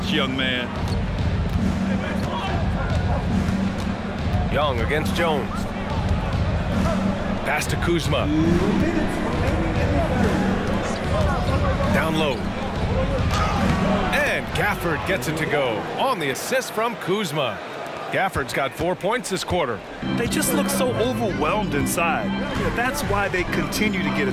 young man. Young against Jones. Pass to Kuzma. Down low. And Gafford gets it to go on the assist from Kuzma. Gafford's got 4 points this quarter. They just look so overwhelmed inside. That's why they continue to get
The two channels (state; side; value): identical; both; correlation 1.00